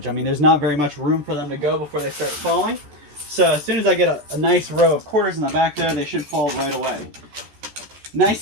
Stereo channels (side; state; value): left; late; 14 ms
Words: I mean, there's not very much room for them to go before they start falling. So as soon as I get a nice row of quarters in the back there, they should fall right away.